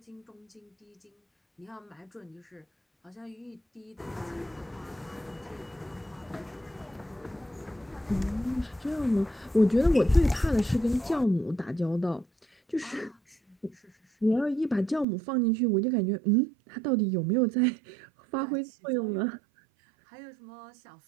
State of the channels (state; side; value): drops out; left; at 15.1 s